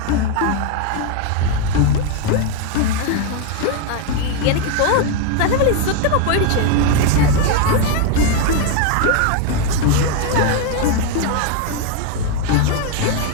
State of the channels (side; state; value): both; different; correlation 0.01